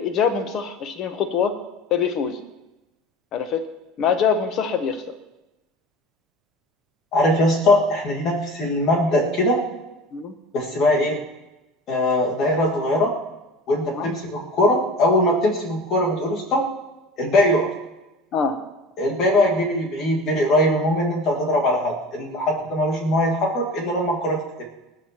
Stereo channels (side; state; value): both; normal; correlation 0.37